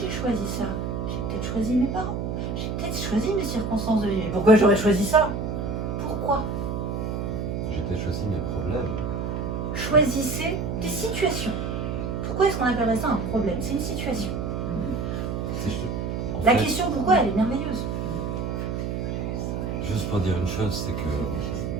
choisi ça, j'ai peut-être choisi mes parents, j'ai peut-être choisi mes circonstances de vie. Mais pourquoi j'aurais choisi ça? Pourquoi? J'ai peut-être choisi mes problèmes. Choisissez des situations. Pourquoi est-ce qu'on appellerait ça un problème? C'est une situation. En La fait, question pourquoi, elle est merveilleuse. juste pour dire une chose, c'est que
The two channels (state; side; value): noise; right; hum, 2 dB below the sound